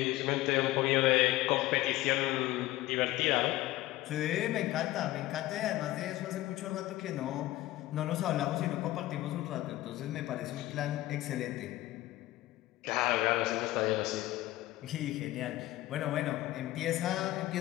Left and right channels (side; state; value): right; quieter; 16.7 dB